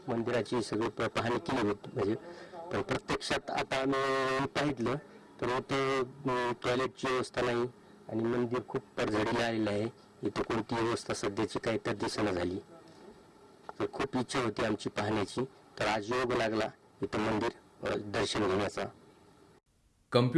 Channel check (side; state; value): both; identical; correlation 1.00